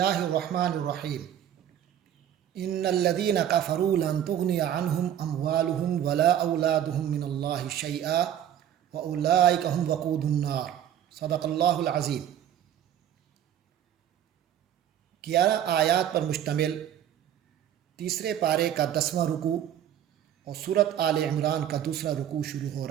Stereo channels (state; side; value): quieter; left; 10.4 dB